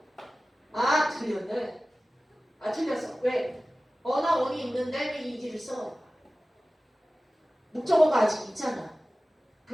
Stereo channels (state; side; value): normal; both; correlation 0.96